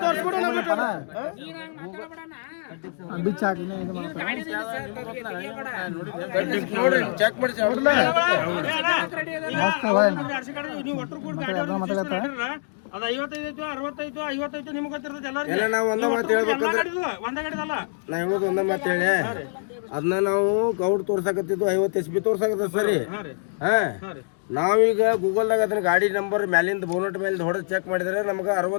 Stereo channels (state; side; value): silent; right; digital silence